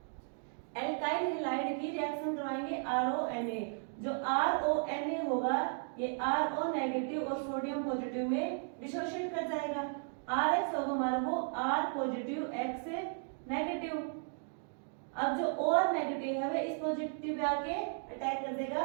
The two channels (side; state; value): left; silent; 54 dB below the other